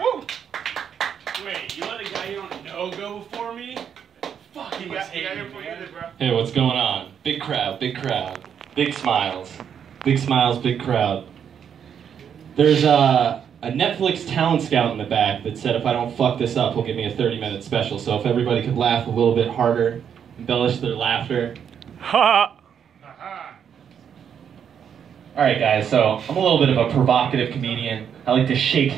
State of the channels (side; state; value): left; quieter; 8.1 dB